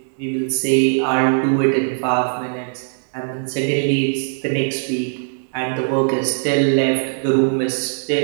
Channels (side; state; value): left; silent; 66 dB below the other